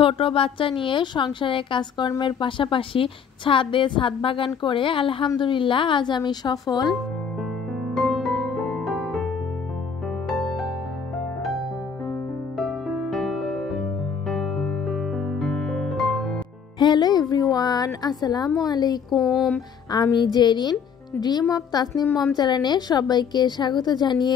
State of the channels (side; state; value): right; quieter; 6.6 dB